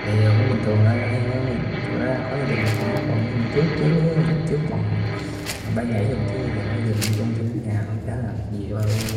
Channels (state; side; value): identical; both; correlation 1.00